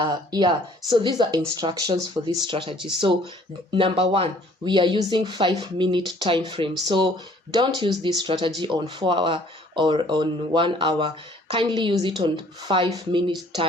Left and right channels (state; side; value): normal; both; correlation 0.57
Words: these are instructions for this strategy. So number 1, we are using 5-minute time frame. So don't use this strategy on 4-hour or on 1 hour. Kindly use it on 5-minute